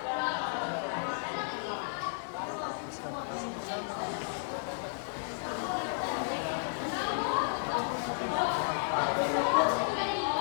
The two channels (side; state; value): right; silent; digital silence